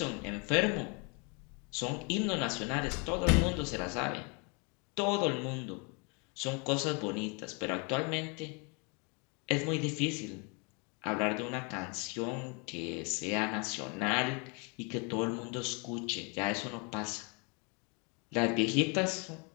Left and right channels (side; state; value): right; quieter; 33.3 dB